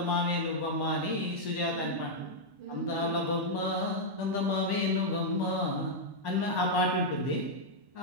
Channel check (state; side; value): late; left; 1.1 ms